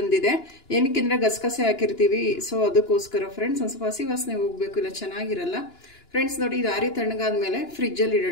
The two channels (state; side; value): late; right; 2.9 ms